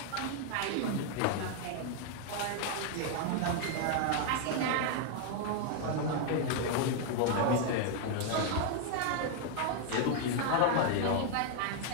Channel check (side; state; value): both; different; correlation 0.00